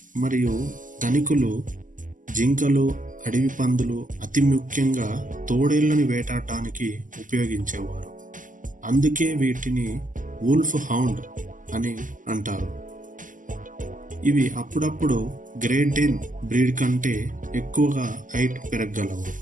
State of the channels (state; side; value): late; left; 0.38 ms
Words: మరియు ధనికులు జింకలు, అడవి పందులు, అతి ముఖ్యంగా తోడేళ్లను వేటాడటానికి ఉపయోగించేవారు. అందుకే వీటిని వుల్ఫ్ హౌండ్ అని అంటారు. ఇవి అప్పుడప్పుడు గ్రేట్ డేన్ బ్రీడ్ కంటే ఎక్కువగా హైట్ పెరగగలవు.